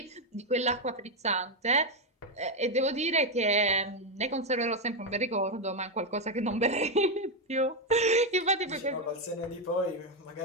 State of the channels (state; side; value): normal; both; correlation 0.05